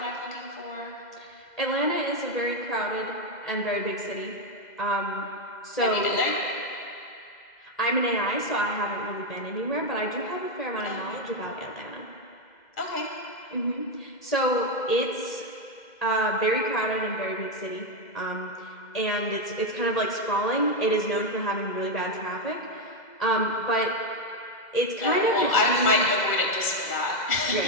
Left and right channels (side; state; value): right; late; 2.0 ms